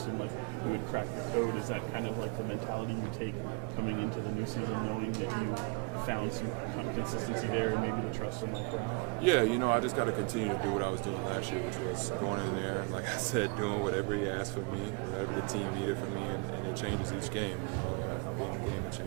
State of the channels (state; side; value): quieter; left; 31.4 dB